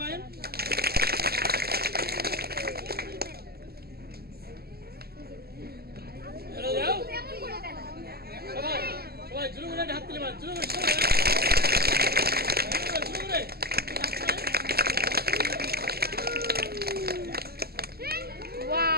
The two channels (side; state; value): left; late; 0.46 ms